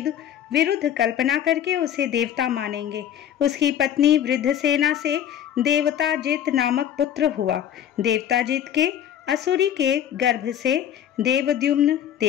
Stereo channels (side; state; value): right; quieter; 10.1 dB